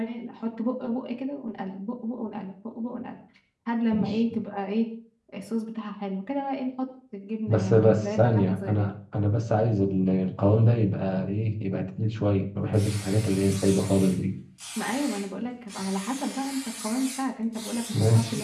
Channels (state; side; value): identical; both; correlation 1.00